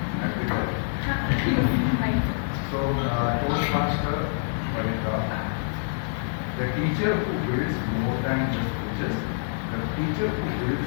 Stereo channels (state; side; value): silent; right; 61 dB below the other